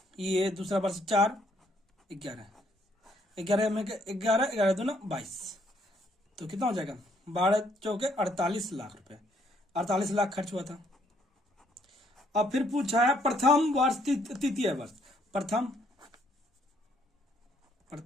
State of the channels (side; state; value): both; normal; correlation 0.68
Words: ये दूसरा वर्ष 4 11 11 में 11 11 दूना 22, तो कितना हो जाएगा 12 चौके 48 लाख रुपए, 48 लाख खर्च हुआ था। अब फिर पूछा है प्रथम वर्ष तृतीय वर्ष, प्रथम